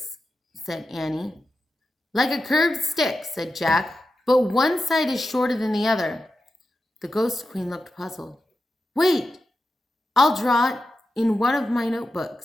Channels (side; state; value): both; normal; correlation 0.90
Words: said Annie. Like a curved stick, said Jack, but one side is shorter than the other. The Ghost Queen looked puzzled. Wait, I'll draw it in one of my